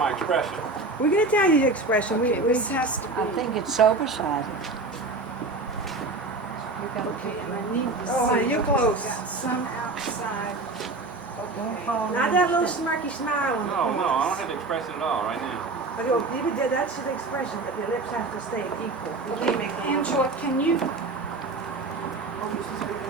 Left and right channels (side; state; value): left; quieter; 3.4 dB